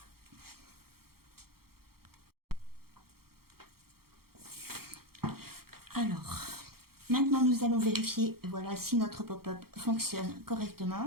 Alors, maintenant nous allons vérifier, voilà, si notre pop-up fonctionne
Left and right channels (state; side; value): late; left; 0.94 ms